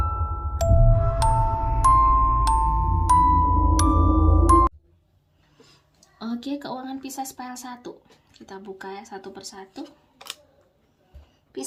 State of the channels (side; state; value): both; identical; correlation 1.00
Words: Oke, keuangan Pisces file 1. Kita buka ya satu persatu.